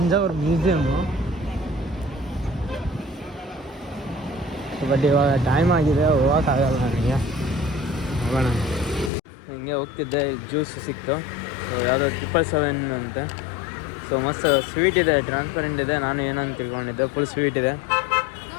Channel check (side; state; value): right; drops out; at 9.1 s